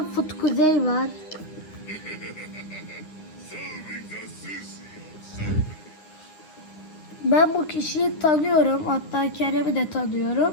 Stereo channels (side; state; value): right; late; 9.8 ms